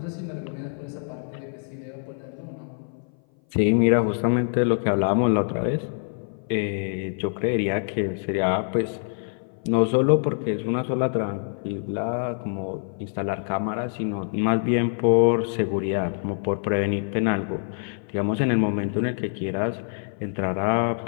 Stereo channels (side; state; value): right; silent; 58 dB below the other